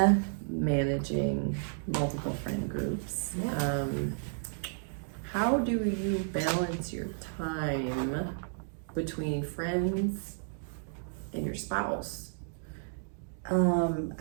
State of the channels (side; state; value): left; silent; digital silence